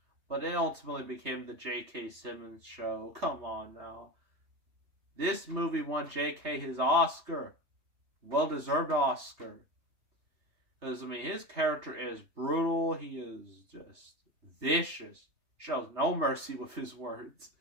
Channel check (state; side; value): late; left; 3.3 ms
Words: But it ultimately became the J.K. Simmons show. Come on now. This movie won J.K. his Oscar. Well-deserved Oscar. Because, I mean, his character is brutal. He is just vicious. Shows no mercy with his words.